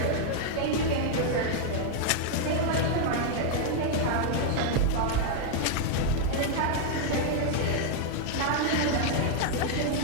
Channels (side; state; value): both; different; correlation -0.01